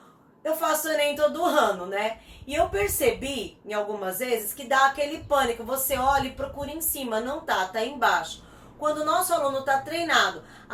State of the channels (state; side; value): identical; both; correlation 1.00